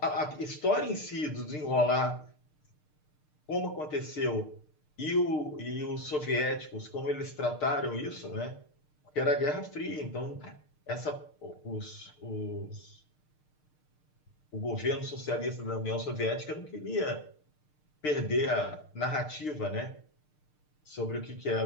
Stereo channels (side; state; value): right; late; 6.6 ms